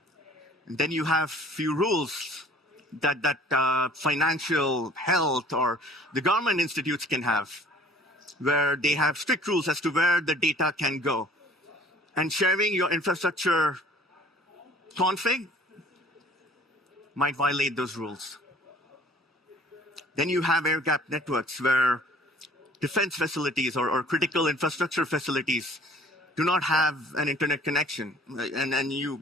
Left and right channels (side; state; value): both; normal; correlation 0.52